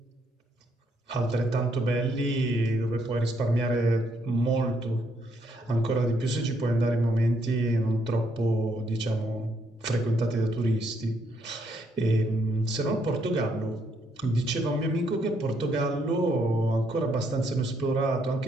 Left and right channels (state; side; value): normal; both; correlation 0.73